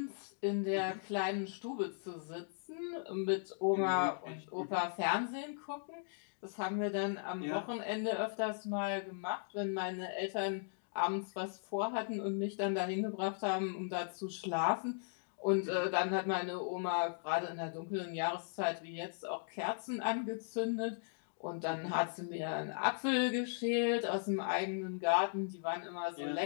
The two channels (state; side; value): silent; right; digital silence